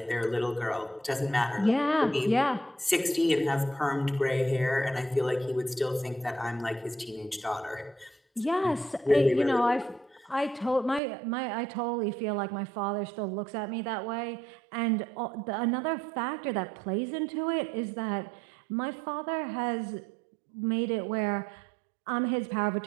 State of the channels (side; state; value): left; drops out; at 11.0 s